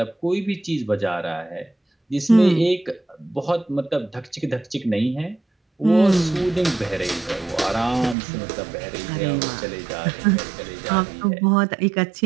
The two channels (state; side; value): drops out; left; at 8.2 s